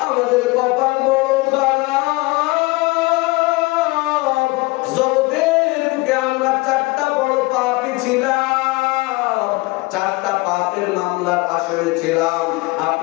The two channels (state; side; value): quieter; right; 23.5 dB